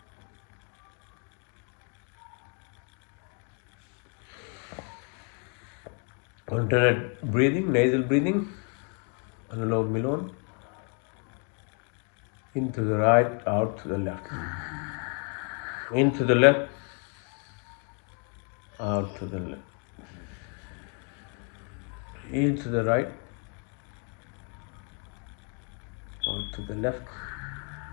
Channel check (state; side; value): quieter; right; 39.8 dB